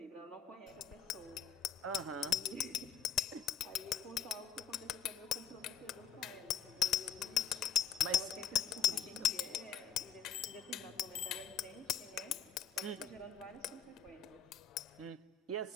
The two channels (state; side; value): quieter; right; 7.8 dB